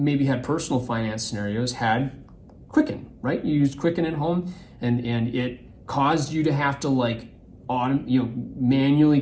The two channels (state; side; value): identical; both; correlation 1.00